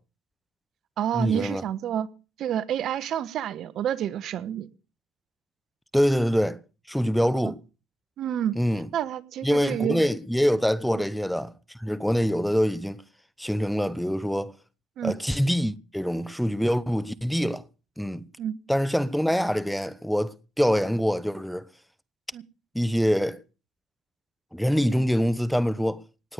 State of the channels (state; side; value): normal; both; correlation 0.93